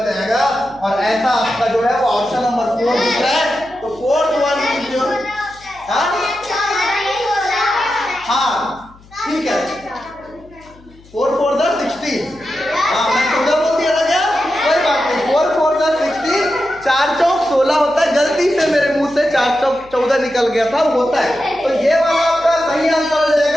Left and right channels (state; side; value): noise; left; hum, 25 dB below the sound